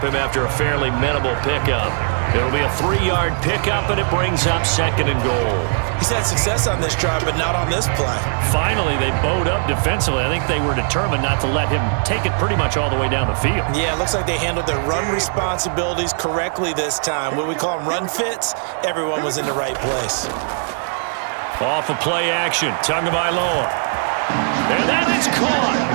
him after a fairly minimal pickup. It'll be a 3-yard pickup, and it brings up 2nd and goal. He's had success on this drive, but not on this play. Finally, they bowed up defensively. I think they were determined not to let him take it pretty much all the way down the field. Yeah, it looks like they handled their run responsibilities correctly this time. What we call them run fits, everyone was in the right place. Off of play action, Tagovailoa. And that is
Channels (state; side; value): silent; left; digital silence